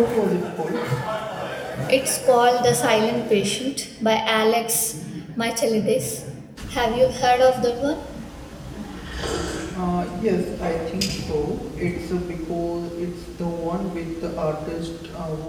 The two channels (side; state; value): both; identical; correlation 1.00